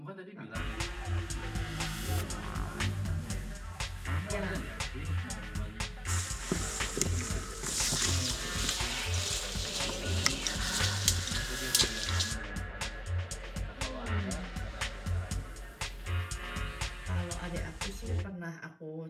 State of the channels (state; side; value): identical; both; correlation 1.00